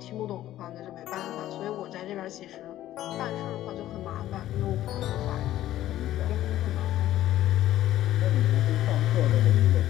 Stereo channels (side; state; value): right; quieter; 13.6 dB